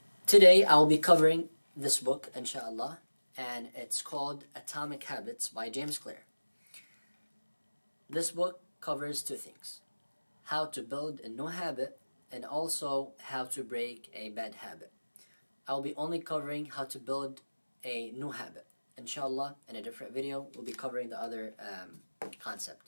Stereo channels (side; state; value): both; inverted; correlation -1.00